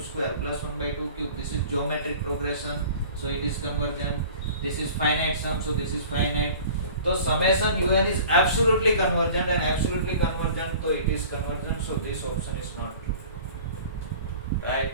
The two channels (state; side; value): inverted; both; correlation -0.44